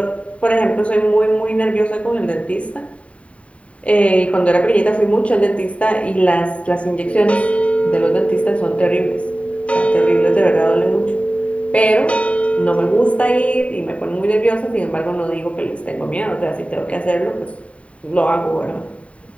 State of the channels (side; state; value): right; late; 0.064 ms